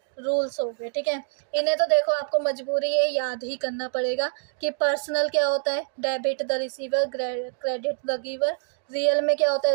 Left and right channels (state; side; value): silent; left; digital silence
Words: रूल्स हो गए, ठीक है। इन्हें तो देखो आपको मजबूरी है, याद ही करना पड़ेगा कि पर्सनल क्या होता है, debit the receiver, credit the giver. Real में क्या होता